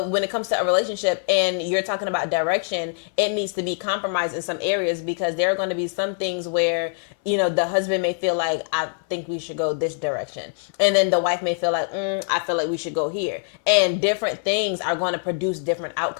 when it comes to a relationship and you're talking about direction, it needs to be compromised in some areas, because there are going to be some things where, you know, the husband may feel like, I think we should go this direction. And then the wife may feel like, I feel like we should go here. And different things are going to produce different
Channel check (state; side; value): silent; right; 59 dB below the other